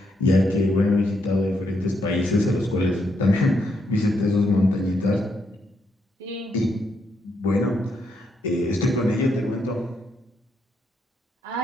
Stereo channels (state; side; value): normal; both; correlation 0.78